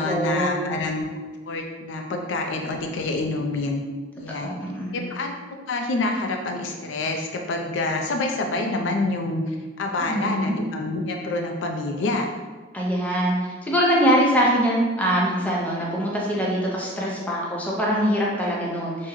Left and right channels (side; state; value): both; normal; correlation 0.36